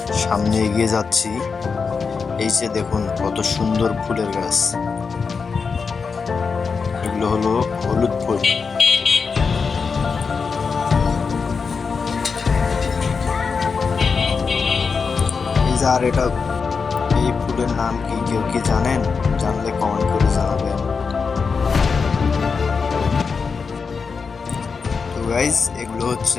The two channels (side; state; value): right; quieter; 5.2 dB